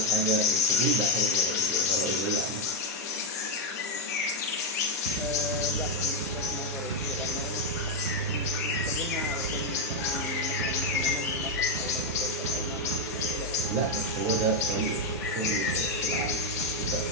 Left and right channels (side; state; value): both; normal; correlation 0.03